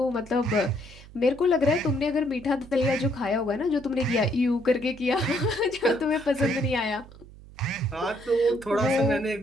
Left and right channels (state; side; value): noise; right; hum, 20 dB below the sound